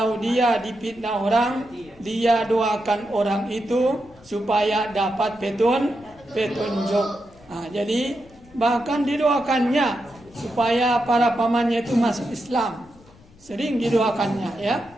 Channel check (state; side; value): noise; left; rumble, 26 dB below the sound